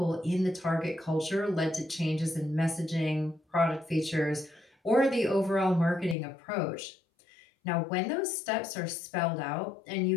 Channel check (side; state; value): right; drops out; at 6.2 s